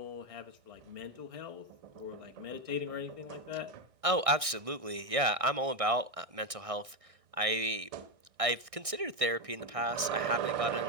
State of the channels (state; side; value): late; left; 1.6 ms